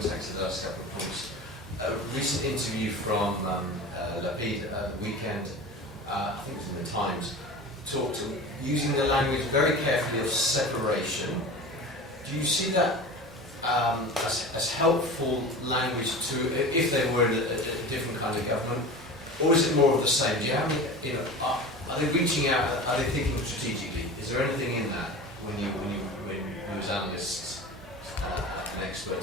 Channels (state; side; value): normal; both; correlation 0.33